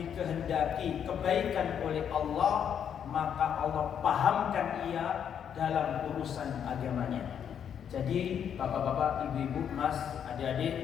kebaikan oleh Allah, maka Allah pahamkan ia dalam urusan agamanya. Jadi bapak-bapak, ibu-ibu, mas,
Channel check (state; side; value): quieter; right; 8.4 dB